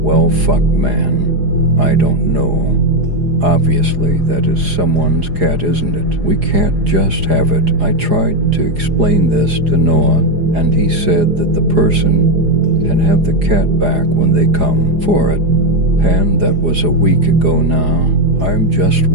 Well, fuck, man. I don't know. Obviously, that is someone's cat, isn't it? We can't just have it. I tried to explain this to Noah, and he said that the person can have the cat back when they come for it. And that was a week ago now. I'm just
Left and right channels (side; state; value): left; late; 4.9 ms